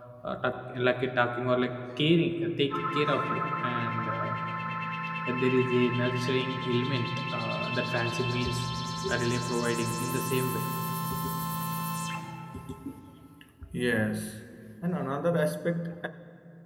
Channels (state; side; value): identical; both; correlation 1.00